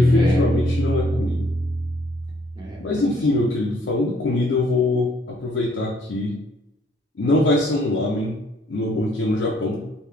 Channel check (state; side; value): normal; both; correlation 0.64